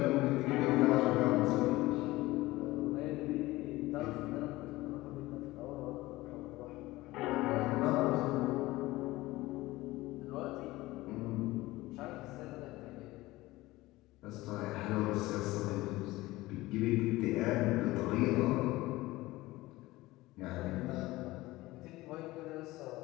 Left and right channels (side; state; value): right; quieter; 18.8 dB